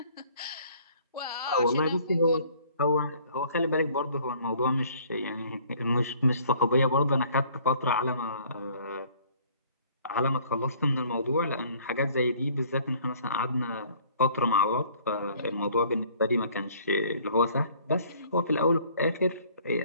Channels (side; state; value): both; inverted; correlation -0.56